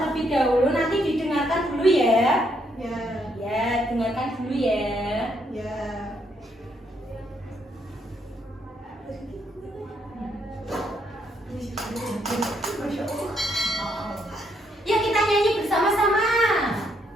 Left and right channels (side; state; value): both; normal; correlation 0.74